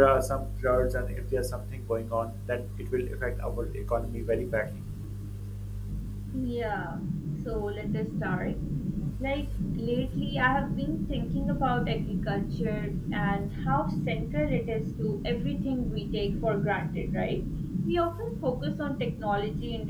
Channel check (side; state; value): both; identical; correlation 1.00